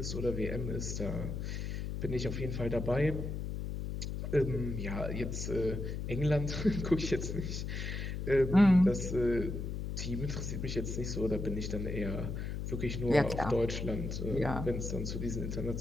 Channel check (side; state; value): left; noise; hum, 4 dB below the sound